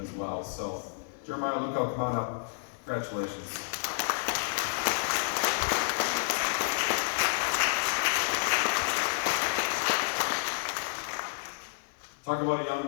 well. So, Jeremiah Luco, come on up. Congratulations. Talk about a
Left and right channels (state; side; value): silent; right; 58 dB below the other